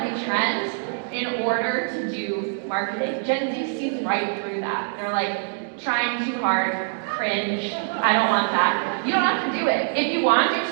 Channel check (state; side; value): silent; left; digital silence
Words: trend in order to do marketing. Gen Z sees right through that. They're like, trying too hard, cringe, I don't want that. You don't have to do it. If you want to do